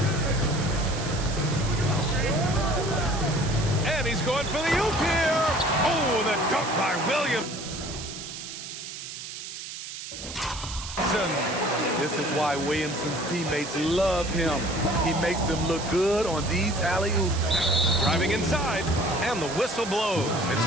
And he's going for the oop here. Oh, the dunk by Williamson. This is why Williamson's teammates love him. He makes them look good on these alley-oops. Driving inside, and the whistle blows. It's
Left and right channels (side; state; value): right; noise; hiss, 10 dB below the sound